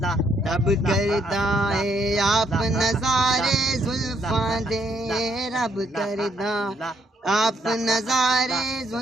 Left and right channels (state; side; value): normal; both; correlation 0.72